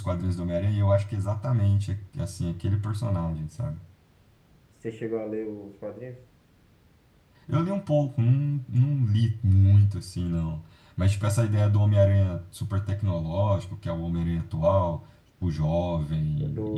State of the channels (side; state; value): both; identical; correlation 1.00